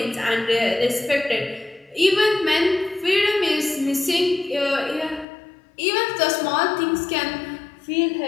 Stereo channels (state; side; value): drops out; right; at 5.2 s